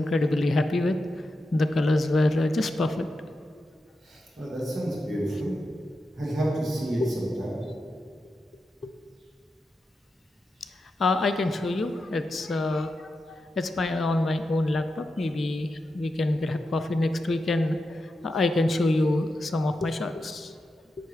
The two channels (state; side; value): normal; both; correlation 0.89